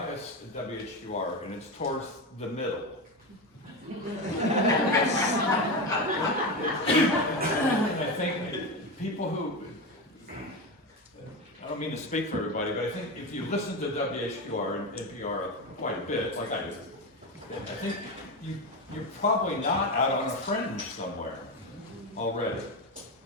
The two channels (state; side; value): normal; both; correlation 0.17